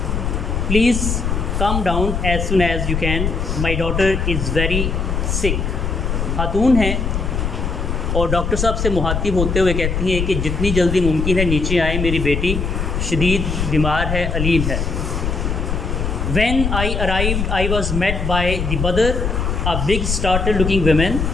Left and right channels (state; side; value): noise; left; rumble, 1 dB below the sound